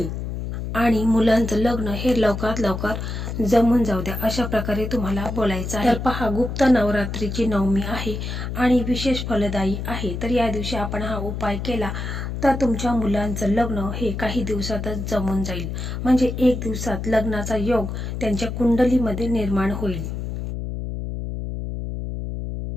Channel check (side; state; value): left; noise; hum, 5 dB below the sound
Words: आणि मुलांचं लग्न हे लवकरात लवकर जमून जाऊ द्या, अशा प्रकारे तुम्हाला बोलायचं आहे। तर पहा, गुप्त नवरात्रीची नवमी आहे आणि विशेष फलदायी आहे। तर या दिवशी आपण हा उपाय केला तर तुमच्या मुलांचं लग्न हे काही दिवसातच जमून जाईल, म्हणजे 1 दिवसात लग्नाचा योग त्यांच्या कुंडलीमध्ये निर्माण होईल।